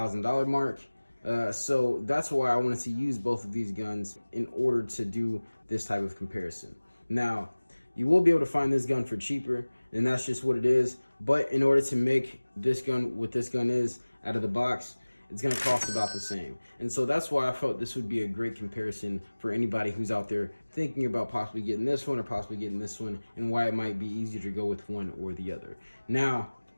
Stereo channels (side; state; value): both; inverted; correlation -1.00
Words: mark. So that's why I wanted to use both of these guns in order to do this type of comparison. Now, you will be able to find this gun for cheaper, and that's just what it is. But in order to make this gun what this gun is out of the box, it's gonna cost about the same. And so that's why I felt this would be a great comparison for anybody who's out there thinking about possibly getting this one or possibly getting this one, and why it might be easier to go with one or the other. Now,